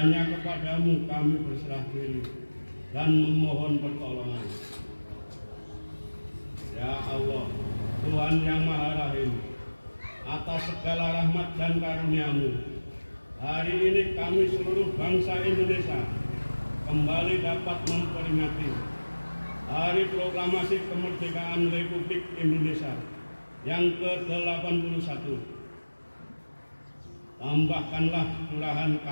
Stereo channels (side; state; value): both; inverted; correlation -1.00